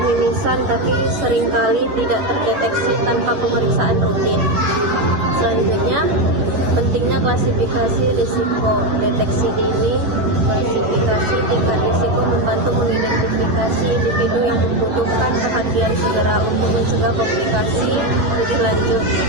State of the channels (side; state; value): left; late; 11 ms